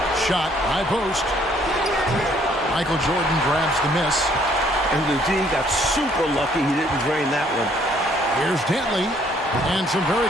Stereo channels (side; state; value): both; normal; correlation 0.64